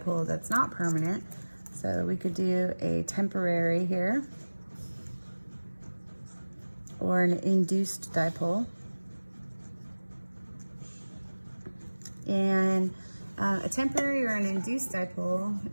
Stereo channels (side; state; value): both; inverted; correlation -1.00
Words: that's not permanent. So we could do a temporary here, or an induced dipole. And a temporary or an induced dipole,